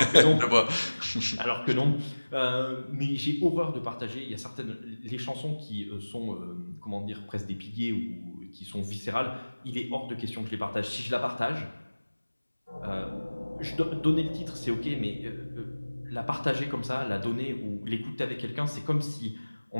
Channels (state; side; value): inverted; both; correlation -1.00